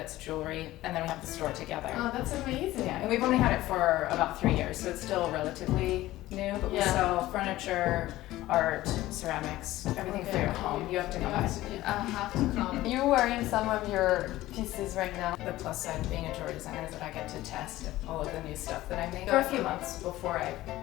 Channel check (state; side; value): quieter; right; 16.3 dB